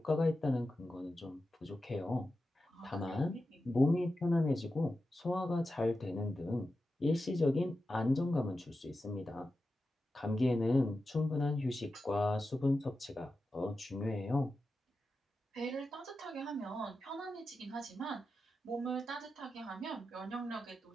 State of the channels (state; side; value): normal; both; correlation 0.91